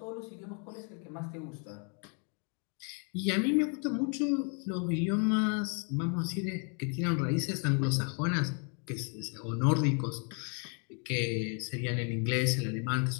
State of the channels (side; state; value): right; quieter; 39.1 dB